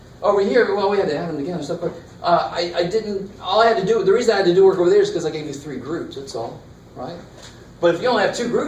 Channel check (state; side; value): identical; both; correlation 1.00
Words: over here? Well, we had to add them together and stuff. But I didn't. All I had to do. The reason I had to do work over there is because I gave you 3 groups. That's all, right? But if you only have 2